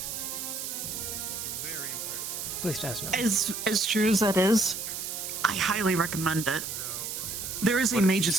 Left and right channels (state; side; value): noise; right; hiss, 5 dB below the sound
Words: At least as known. As true as that is, I highly recommend it. There is a mages